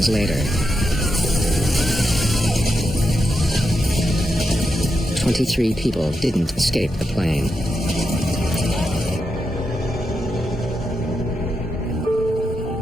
later. 23 people didn't escape the plane.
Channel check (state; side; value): normal; both; correlation 0.85